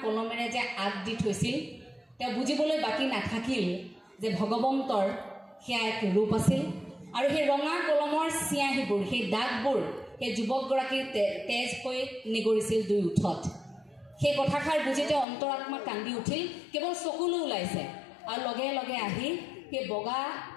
কলমেৰে যে আগ দি থৈছিল, তেওঁ বুজিবলৈ বাকী নাথাকিল যে ভগৱন্তৰ সেয়া এক ৰূপ আছিল। আৰু সেই ৰঙা কলমৰ চিয়াহীবোৰ, সেই দাগবোৰ সেই যুৱকগৰাকীৰ তেজ হৈ নিগৰিছিল দুই ওঠত। সেই কথাষাৰ বুজি তেওঁ অন্তৰাত্মা কান্দি উঠিল, কেৱল চকুলো ওলাইছে। আৰু লগে লগে আহি সেই বগা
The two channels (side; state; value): right; drops out; at 15.2 s